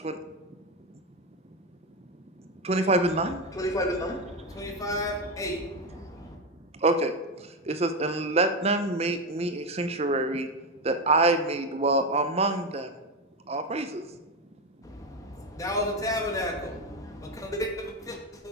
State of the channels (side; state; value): both; normal; correlation 0.13